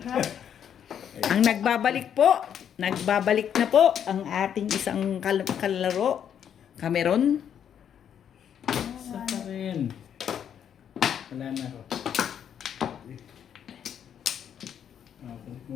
Ha? Ang nagbabalik na po ang ating isang kalaro, Cameron. Isa pa rin. Wala na ako.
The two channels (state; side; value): quieter; right; 8.9 dB